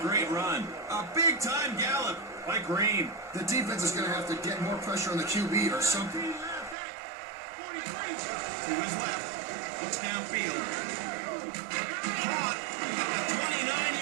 great run. A big-time gallop by Green. The defense is going to have to get more pressure on the QB or something. To his left. Looks downfield. Caught at the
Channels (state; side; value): drops out; left; at 6.8 s